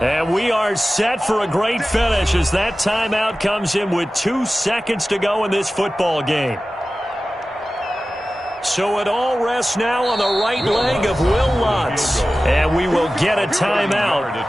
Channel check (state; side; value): normal; both; correlation 0.95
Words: And we are set for a great finish as that timeout comes in with 2 seconds to go in this football game. So it all rests now on the right leg of Will Lutz. And we will get a